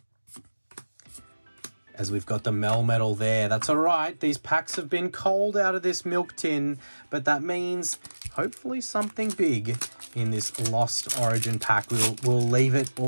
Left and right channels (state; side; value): inverted; both; correlation -1.00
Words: As we've got the Melmetal there. That's all right. These packs have been cold out of this milk tin, but that means hopefully something big in this Lost Origin pack. We'll leave it